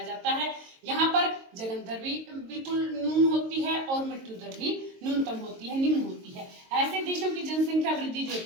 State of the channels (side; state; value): left; late; 22 ms